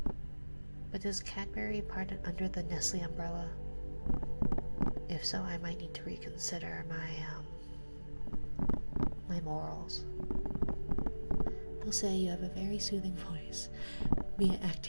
But is Cadbury part under the Nestle umbrella? If so, I might need to reconsider my morals. They'll say you have a very soothing voice, be it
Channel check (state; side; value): inverted; both; correlation -1.00